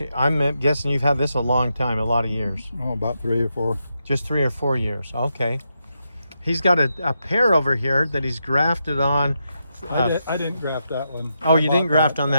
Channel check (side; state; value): both; inverted; correlation -0.84